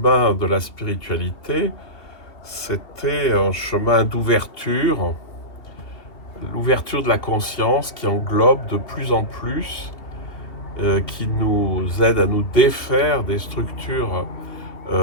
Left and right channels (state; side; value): late; right; 2.7 ms